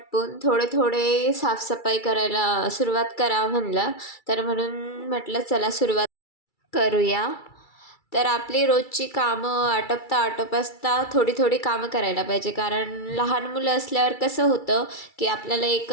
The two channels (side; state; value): right; late; 2.3 ms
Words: थोडे थोडे साफसफाई करायला सुरुवात करावं म्हणलं. तर म्हणून म्हटलं चला सुरुवात करूया. तर आपली रोजची कामं आटपता थोडी थोडी कामं करायला पाहिजे, कारण लहान मुलं असल्यावर कसं होतं की आपल्याला